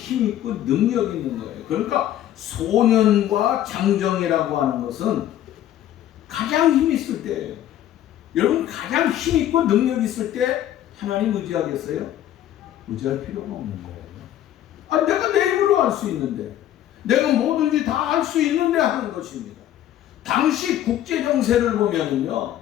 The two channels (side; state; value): right; quieter; 12.1 dB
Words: 있고 능력 있는 거예요. 그러니까 소년과 장정이라고 하는 것은 가장 힘 있을 때예요. 여러분, 가장 힘 있고 능력 있을 때 하나님 의지하겠어요? 의지할 필요가 없는 거예요. 아, 내가 내 힘으로 할 수 있는데, 내가 뭐든지 다 할 수 있는데 하는 것입니다. 당시 국제 정세를 보면은요,